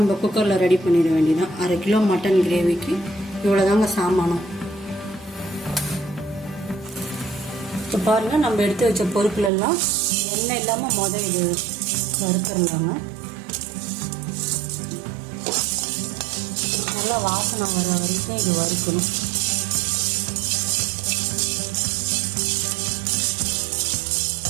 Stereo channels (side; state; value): left; drops out; at 9.5 s